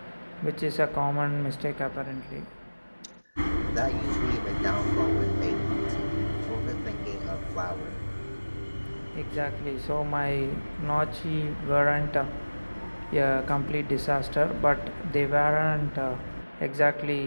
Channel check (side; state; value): both; inverted; correlation -1.00